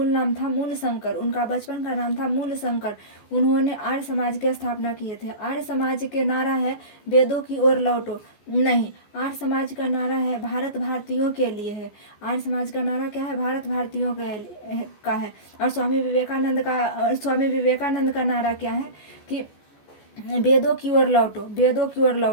था मूलशंकर। उनका बचपन का नाम था मूलशंकर। उन्होंने आर्य समाज की स्थापना किए थे। आर्य समाज के नारा है वेदों की ओर लौटो। नहीं, आर्य समाज का नारा है भारत भारतीयों के लिए है। आर्य समाज का नारा क्या है? भारत भारतीयों का है। और स्वामी विवेकानंद का नारा क्या है? कि वेदों की ओर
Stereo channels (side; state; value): right; late; 14 ms